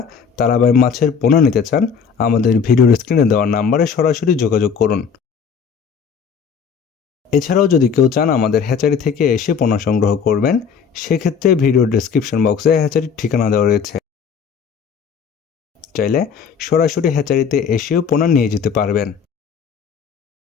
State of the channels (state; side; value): quieter; right; 6.5 dB